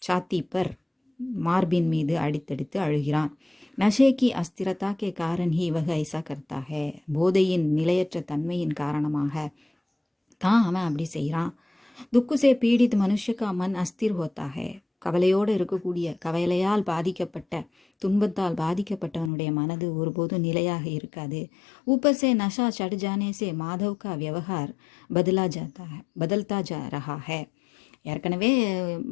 சாத்தி பர் மார்பின் மீது அடித்தடித்து அழுகிறான். நஷேக்கி அஸ்திரதா கே காரன் ஹி வக ஐசா கர்த்தாக. போதையின் நிலையற்ற தன்மையின் காரணமாக தான் அவன் அப்படி செய்கிறான். துக்குசே பீடித் மனுஷக்கா மன் அஸ்திர் ஹோத்தாக. கவலையோடு இருக்கக்கூடிய, கவலையால் பாதிக்கப்பட்ட, துன்பத்தால் பாதிக்கப்பட்டவனுடைய மனது ஒருபோதும் நிலையாக இருக்காது. ஊப்பர் சே நஷா சட் ஜானே சே மாதவ் கா வியவஹார் பதல்தா ஜா ரஹா ஹே. ஏற்கனவே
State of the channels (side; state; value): right; drops out; at 19.3 s